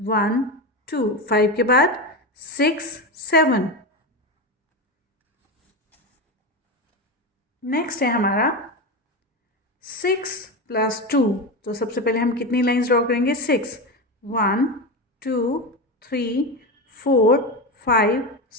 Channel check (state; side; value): normal; both; correlation 0.18